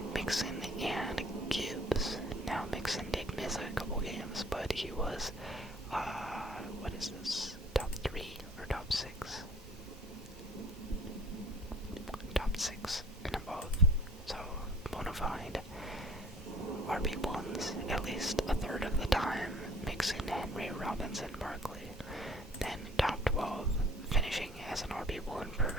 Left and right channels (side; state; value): both; normal; correlation 0.52